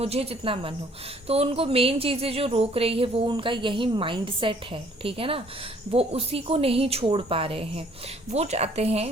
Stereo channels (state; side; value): normal; both; correlation 0.60